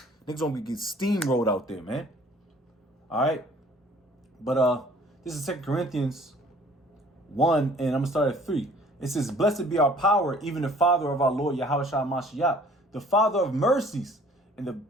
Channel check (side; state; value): both; normal; correlation 0.54